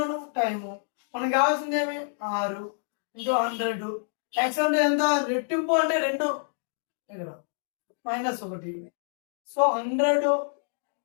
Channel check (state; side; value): silent; right; digital silence